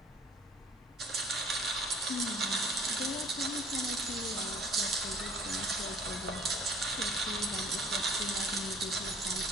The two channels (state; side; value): normal; both; correlation 0.54